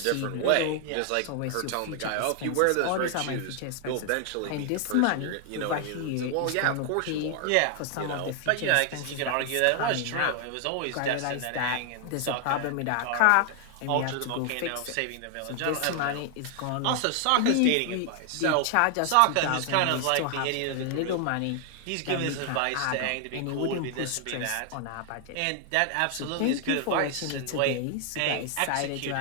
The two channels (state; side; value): different; both; correlation 0.00